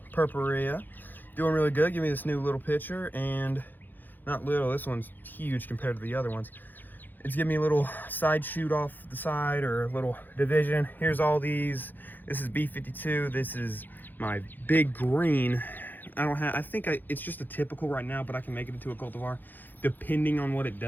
Purpurea. Doing really good. Give me this new little pitcher, and not little, this one's huge compared to the other ones. It's giving me a little side shoot off the side, or a little division. Here's all these. This is B52. This is my big green. It's just a typical right now, but I can make it into a cultivar depending on what it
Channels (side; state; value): right; late; 0.088 ms